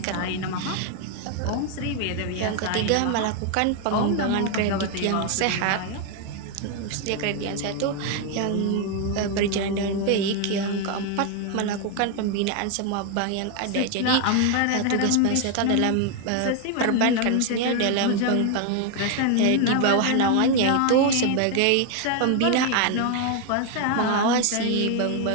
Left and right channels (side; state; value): both; different; correlation 0.01